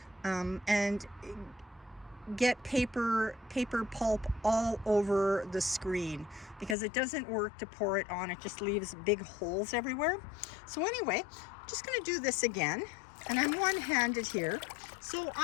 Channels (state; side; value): drops out; right; at 6.8 s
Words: and get paper pulp all over the screen, because it doesn't work to pour it on. It just leaves big holes everywhere. So anyway, I'm just going to do this again, and I'm one-handed here. So